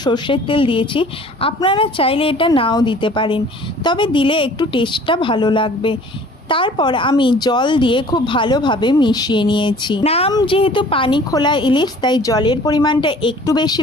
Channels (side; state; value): both; normal; correlation 0.50